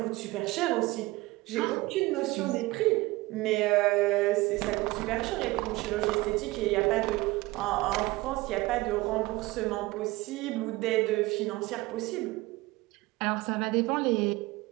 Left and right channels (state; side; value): quieter; left; 20.7 dB